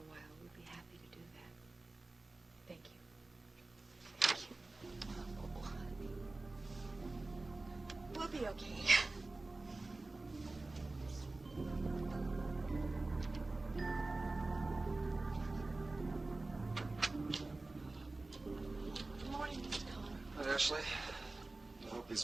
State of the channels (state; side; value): quieter; left; 3.2 dB